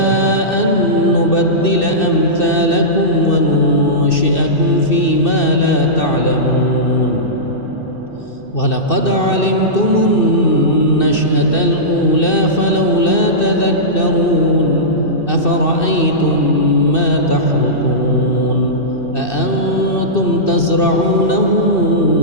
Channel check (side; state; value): right; late; 2.6 ms